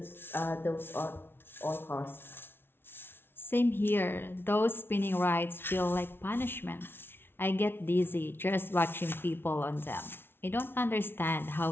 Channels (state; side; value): late; right; 0.11 ms